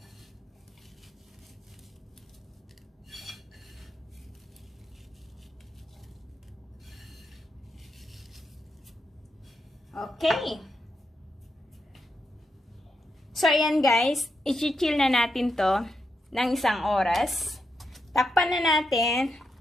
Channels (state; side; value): normal; both; correlation 0.84